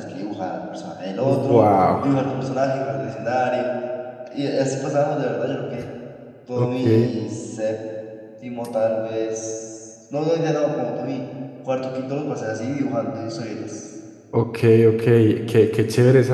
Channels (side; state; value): both; identical; correlation 1.00